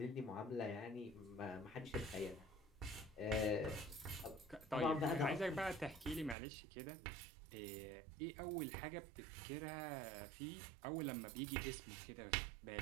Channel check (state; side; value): drops out; left; at 6.4 s